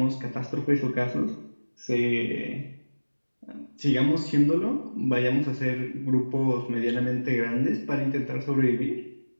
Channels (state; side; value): inverted; both; correlation -1.00